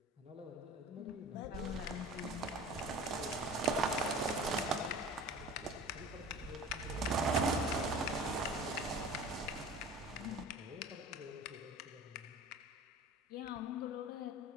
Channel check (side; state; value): both; normal; correlation 0.39